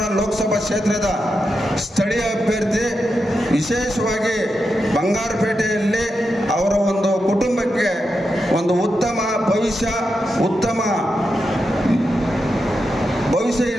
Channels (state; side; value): normal; both; correlation 0.87